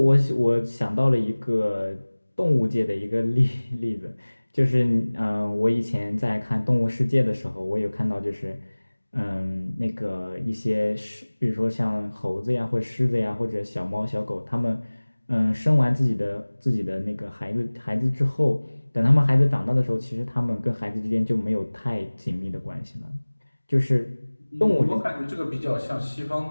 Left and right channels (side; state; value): both; inverted; correlation -1.00